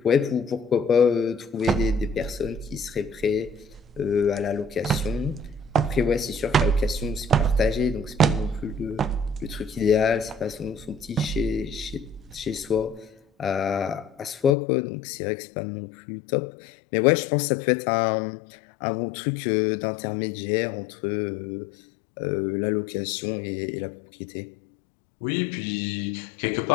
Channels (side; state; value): right; drops out; at 14.6 s